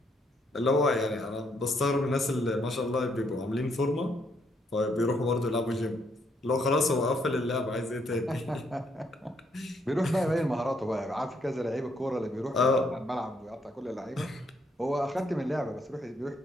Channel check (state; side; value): normal; both; correlation 0.72